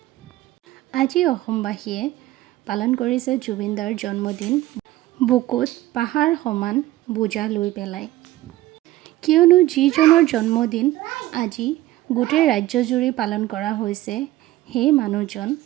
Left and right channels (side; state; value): left; quieter; 16.1 dB